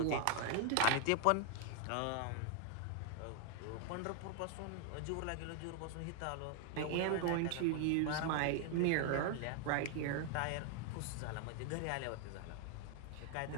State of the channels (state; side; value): different; both; correlation 0.00